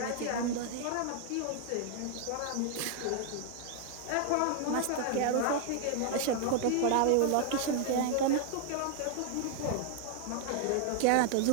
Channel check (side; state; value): both; different; correlation 0.00